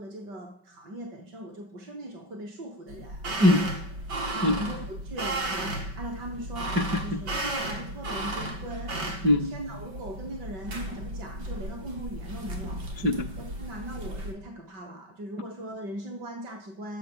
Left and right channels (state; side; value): late; left; 5.2 ms